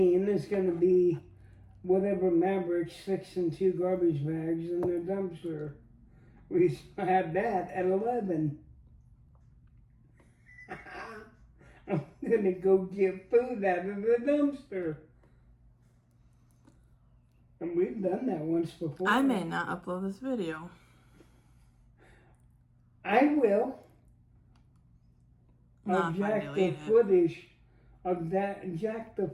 is going to be whatever Maverick sticks in 2 garbage bags in their dumpster. We had that at 11. I'm going to go get food out of the dumpster. And we've done that once before. I may not upload this video. I will. Not I'll if I jack delete the it. footage. Jack the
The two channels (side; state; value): both; identical; correlation 1.00